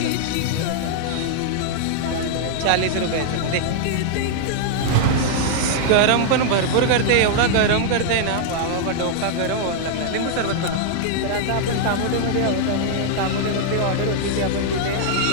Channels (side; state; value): both; different; correlation -0.01